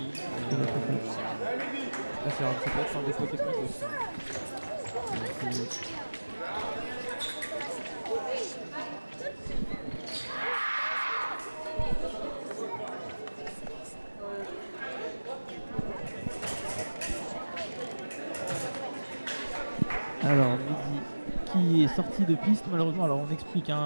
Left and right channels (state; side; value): inverted; both; correlation -1.00